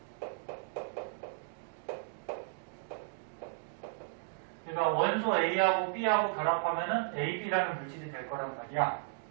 그러니까 원소 A하고 B하고 결합하면은 AB라는 물질이 될 거란 말이야.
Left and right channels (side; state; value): left; silent; digital silence